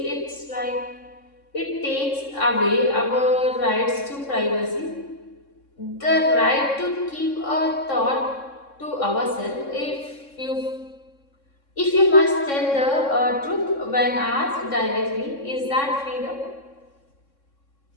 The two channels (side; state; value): right; late; 3.6 ms